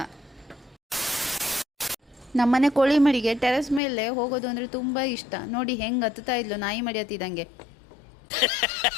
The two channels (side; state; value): right; drops out; at 3.8 s